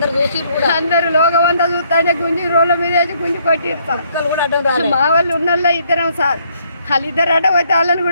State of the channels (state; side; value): inverted; both; correlation -0.69